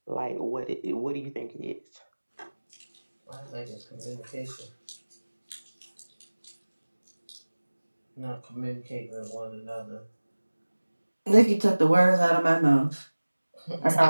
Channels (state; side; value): inverted; both; correlation -1.00